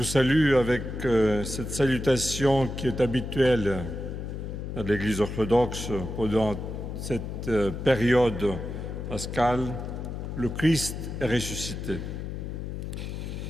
salue avec cette salutation qui est habituelle à l'Église orthodoxe pendant cette période pascale, le Christ est ressuscité.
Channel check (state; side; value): noise; left; hum, 6 dB below the sound